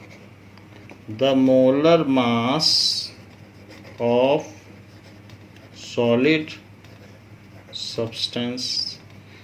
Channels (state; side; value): identical; both; correlation 1.00